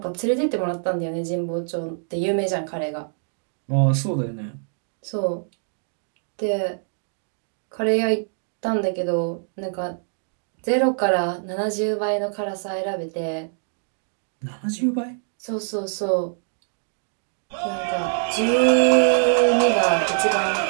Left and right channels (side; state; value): left; silent; digital silence